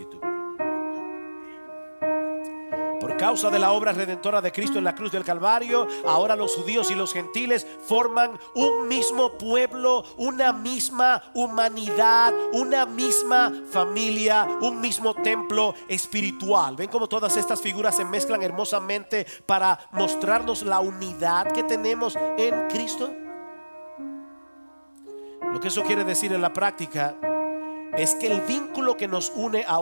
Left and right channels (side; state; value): both; inverted; correlation -1.00